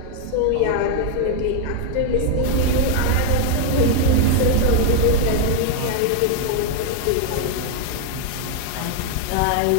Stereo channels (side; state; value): both; different; correlation 0.00